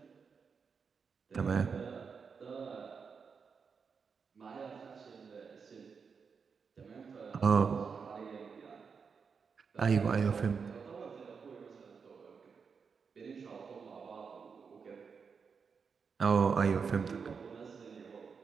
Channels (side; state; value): left; quieter; 5.8 dB